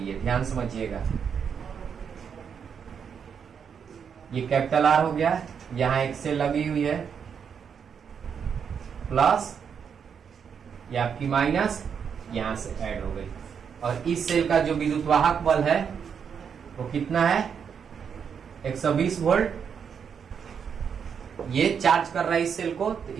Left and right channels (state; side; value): quieter; left; 7.1 dB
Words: ध्यान समझिएगा, ये कैपिटल R हो गया, यहां एक सेल लगी हुई है प्लस, ये आपकी माइनस, यहां से ऐड हो गई, और इस सेल का जो विद्युत वाहक बल है वो कितना है, 120 वोल्ट। ये चार्ज कर रहा है इस सेल को, तो